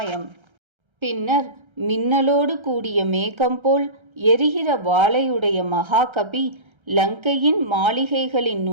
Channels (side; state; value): left; late; 1.3 ms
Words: பின்னர் மின்னலோடு கூடிய மேகம் போல் எரிகிற வாளையுடைய மகாகபி லங்கையின் மாளிகைகளின்